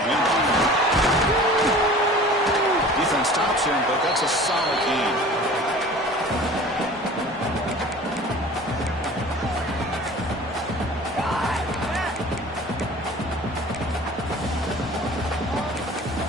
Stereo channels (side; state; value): both; normal; correlation 0.43